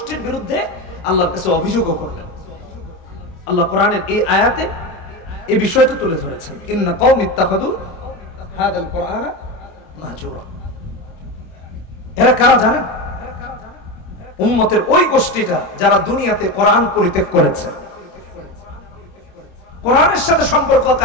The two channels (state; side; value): late; right; 26 ms